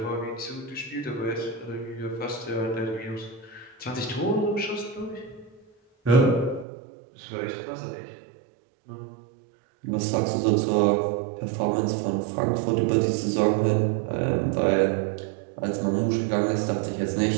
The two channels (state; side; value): drops out; left; at 6.7 s